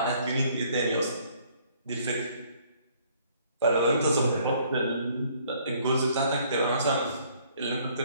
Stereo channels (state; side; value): inverted; both; correlation -0.62